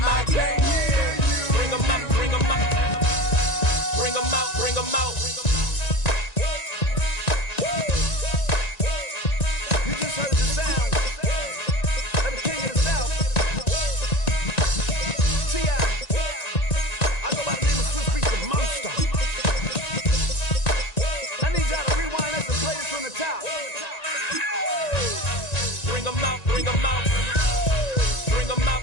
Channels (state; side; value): late; right; 1.9 ms